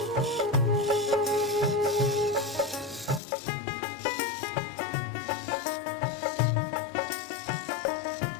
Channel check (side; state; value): right; drops out; at 3.2 s